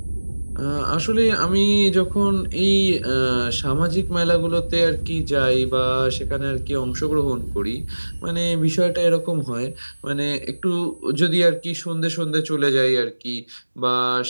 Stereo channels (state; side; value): inverted; both; correlation -1.00